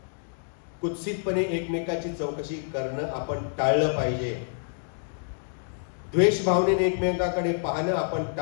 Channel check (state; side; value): silent; right; digital silence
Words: कुत्सितपणे एकमेकाची चौकशी करणं आपण टाळलं पाहिजे. द्वेष भावनेने एकमेकांकडे पाहणं आपण